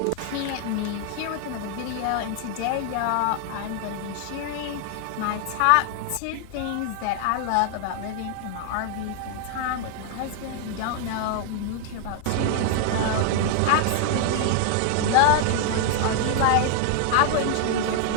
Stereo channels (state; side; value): different; both; correlation 0.00